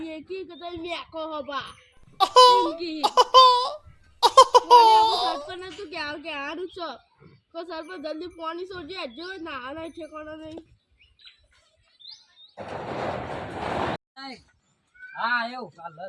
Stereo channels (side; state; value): both; identical; correlation 1.00